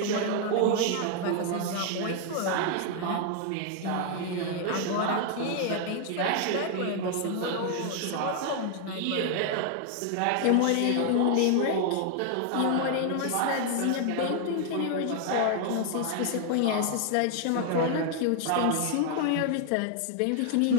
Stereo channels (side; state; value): both; different; correlation 0.00